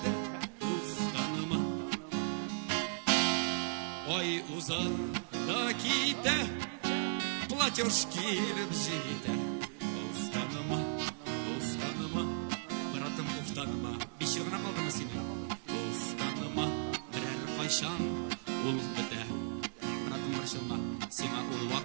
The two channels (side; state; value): left; silent; digital silence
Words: ustanıma Ay uzandaki de Платеж келіп жейді Устаныма, устаныма Братым устаныма Бешер ғана қалдымы сені Устаныма Бірәр қайшан Ол біті Братым біршілма Сема ол